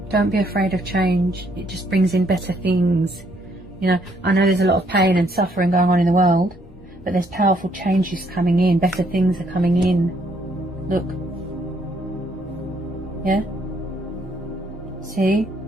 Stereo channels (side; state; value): both; normal; correlation 0.69